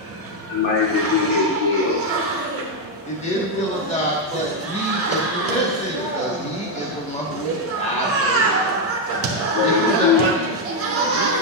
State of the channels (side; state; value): both; normal; correlation 0.03